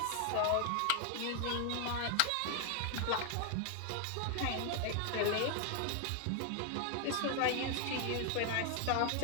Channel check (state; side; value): different; both; correlation 0.00